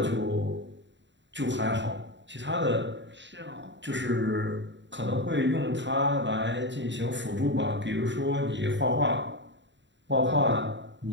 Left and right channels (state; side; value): late; left; 0.53 ms